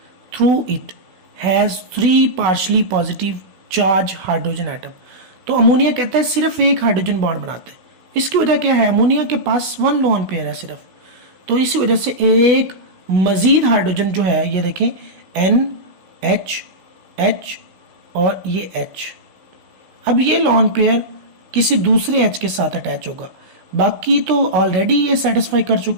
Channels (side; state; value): left; late; 16 ms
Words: Through it has 3 partially positive charge hydrogen atom. तो ammonia कहता है सिर्फ एक हाइड्रोजन बॉन्ड बनाते हैं। इसकी वजह क्या है? अमोनिया के पास 1 लोन पेयर है सिर्फ, तो इसी वजह से एक मजीद हाइड्रोजन जो है, ये देखें NH, H और ये H, अब ये लोन पेयर किसी दूसरे H के साथ अटैच होगा, बाकी तो ऑलरेडी ये सेटिस्फाई कर